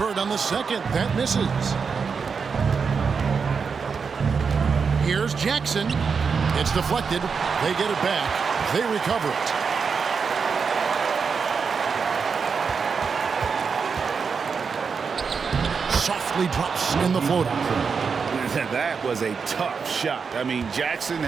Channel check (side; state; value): left; quieter; 5.6 dB